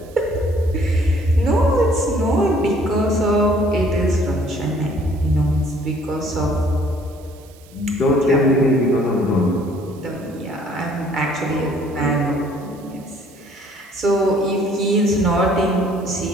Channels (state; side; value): noise; right; hiss, 27 dB below the sound